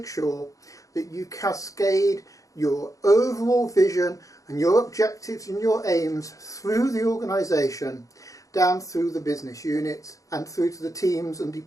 sure that you cascade your overall vision and your objectives and your aims through the organisation, down through the business units and through to the teams and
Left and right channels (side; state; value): right; late; 0.16 ms